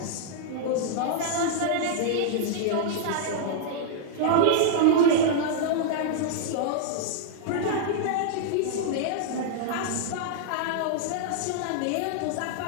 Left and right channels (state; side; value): different; both; correlation -0.01